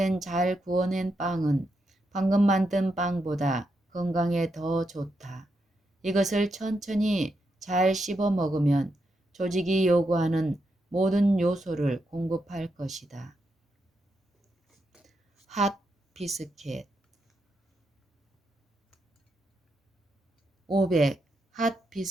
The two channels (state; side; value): normal; both; correlation 0.83